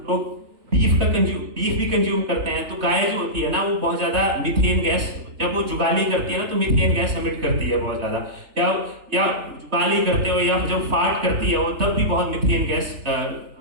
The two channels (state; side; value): late; left; 3.3 ms